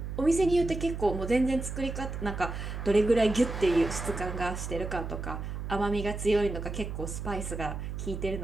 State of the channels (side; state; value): right; noise; hum, 6 dB below the sound